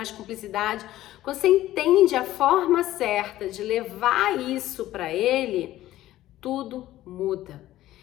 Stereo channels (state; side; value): quieter; right; 14.7 dB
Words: cumplicidade. Quando você entende a forma certa de levar isso para ele, tudo muda.